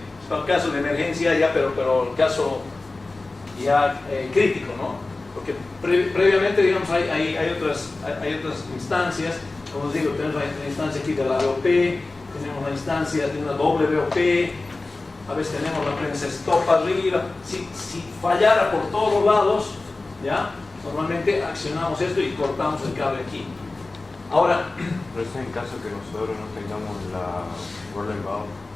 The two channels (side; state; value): right; quieter; 3.3 dB